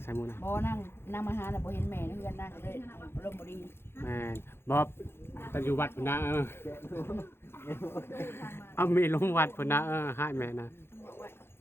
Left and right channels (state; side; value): late; right; 0.11 ms